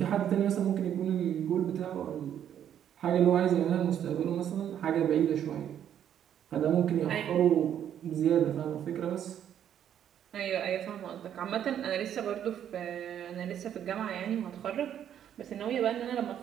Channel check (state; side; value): quieter; left; 9.8 dB